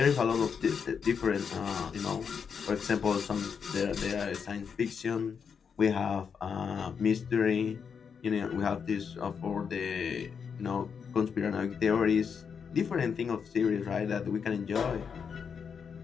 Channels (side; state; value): right; quieter; 6.6 dB